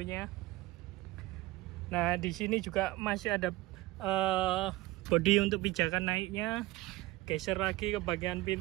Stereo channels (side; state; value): left; quieter; 18.8 dB